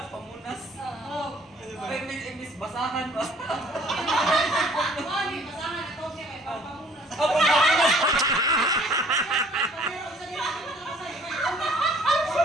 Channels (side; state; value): both; normal; correlation 0.56